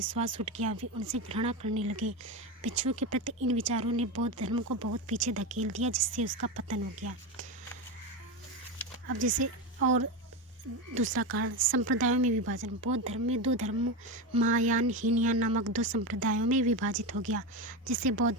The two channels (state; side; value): normal; both; correlation 0.17